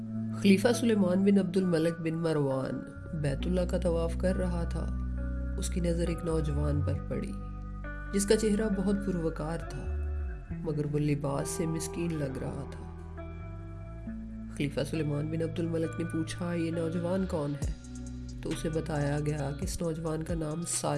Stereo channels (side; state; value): both; identical; correlation 1.00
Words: خلیفہ سلیمان بن عبد الملک بن مروان بیت اللہ کا طواف کر رہا تھا۔ اس کی نظر ایک نوجوان پر پڑی جس کا چہرہ بہت پروقار تھا، مگر وہ لباس سے مسکین لگ رہا تھا۔ خلیفہ سلیمان بن عبد الملک نے پوچھا، یہ نوجوان کون ہے؟ تو اسے بتایا گیا کہ اس نوجوان کا نام